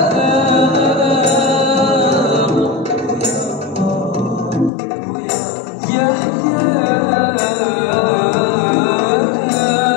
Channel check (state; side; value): drops out; right; at 4.7 s